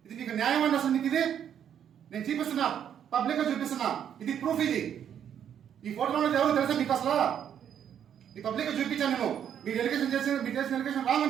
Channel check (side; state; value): left; quieter; 9.1 dB